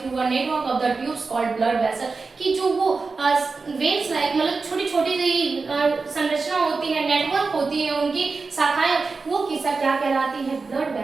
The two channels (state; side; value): quieter; left; 4.3 dB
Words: a network of the tubes called blood vessel, कि जो वो वेन्स लाइक मतलब छोटी छोटी सी संरचना होती है, नेटवर्क होती है, उनकी शाखाएं, वो किस्सा क्या कहलाती है, ब्लड